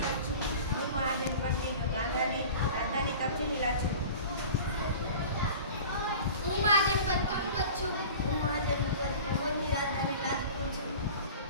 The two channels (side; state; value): both; inverted; correlation -0.39